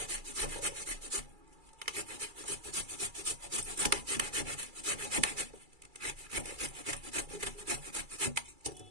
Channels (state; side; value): late; left; 2.3 ms